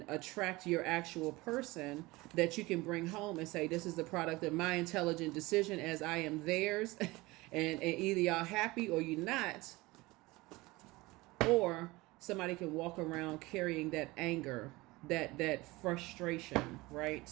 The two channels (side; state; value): left; quieter; 21.4 dB